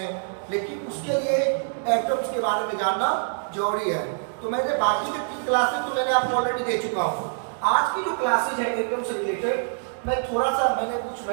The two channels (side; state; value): left; silent; digital silence